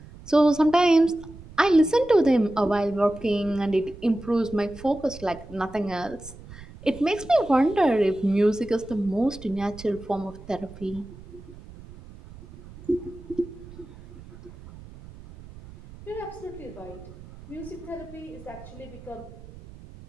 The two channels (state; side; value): noise; right; rumble, 18 dB below the sound